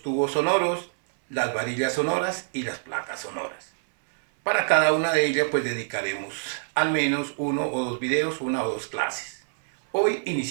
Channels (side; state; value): left; silent; 61 dB below the other